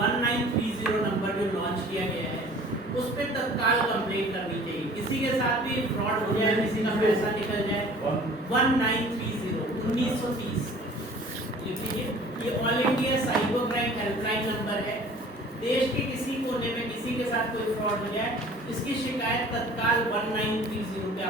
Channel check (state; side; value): normal; both; correlation 0.48